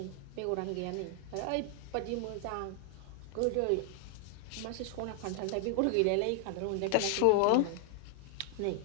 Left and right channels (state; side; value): different; both; correlation -0.01